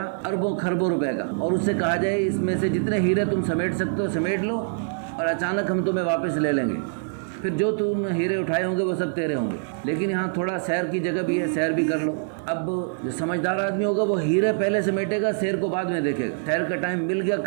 اربوں خربوں روپے کا، اور اس سے کہا جائے اس میں سے جتنے ہیرے تم سمیٹ سکتے ہو سمیٹ لو اور اچانک ہم تمہیں واپس لے لیں گے، پھر جو تم ہیرے اٹھائے ہوں گے وہ سب تیرے ہوں گے۔ لیکن یہاں تھوڑا سیر کی جگہ بھی ہے، سیر بھی کر لو۔ اب جو سمجھدار آدمی ہوگا وہ ہیرے پہلے سمیٹے گا، سیر کو بعد میں دیکھے گا۔ سیر کا ٹائم مل گیا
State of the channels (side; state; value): left; silent; 57 dB below the other